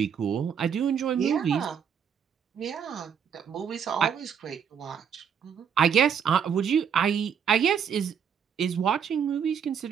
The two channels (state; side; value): quieter; left; 7.6 dB